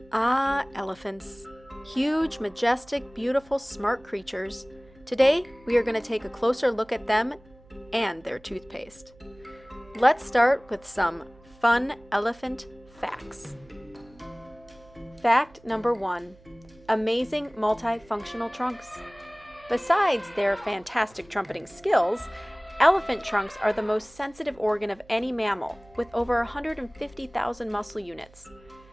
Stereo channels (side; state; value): right; noise; hum, 26 dB below the sound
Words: Ah, elephants. Huge, majestic, beautiful, smart creatures. Today, we are going to take a closer look at them and their toothpaste. Let's start with some fun elephant facts. Fact number 1. Amazing multifunctional trunks. Besides their fantastic trumpeting skills, elephant trunks are the most sensitive organ of any mammal, with over 150,000 muscle units.